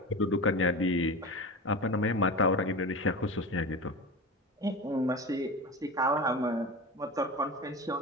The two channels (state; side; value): normal; both; correlation 0.27